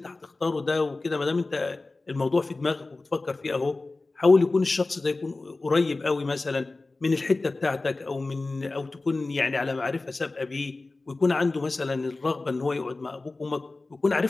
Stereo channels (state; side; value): quieter; right; 3.3 dB